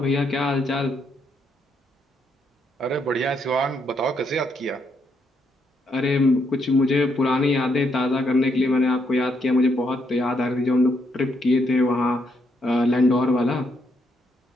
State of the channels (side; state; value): both; normal; correlation 0.76